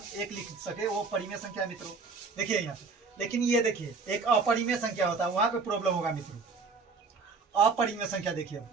1 लिख सके, वो परिमेय संख्या मित्रों। देखिए यहाँ पे, लेकिन ये देखिए एक अपरिमेय संख्या होता है, वहां पे प्रॉब्लम होगा मित्रों। अपरिमेय संख्या देखिए,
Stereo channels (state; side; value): quieter; left; 4.5 dB